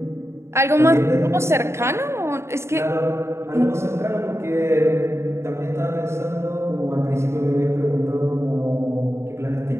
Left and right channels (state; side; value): late; left; 0.13 ms